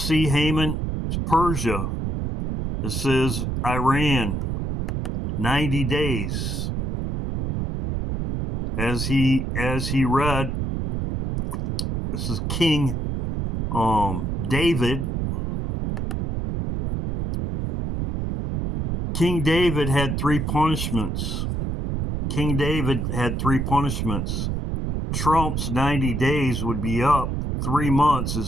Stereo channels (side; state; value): right; noise; rumble, 2 dB below the sound